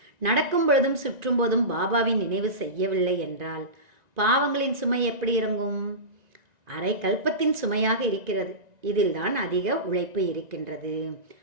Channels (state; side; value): late; left; 1.9 ms